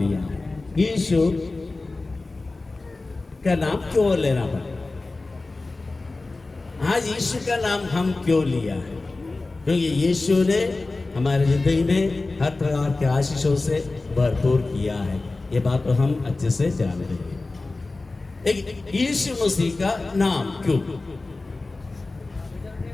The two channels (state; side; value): quieter; right; 3.3 dB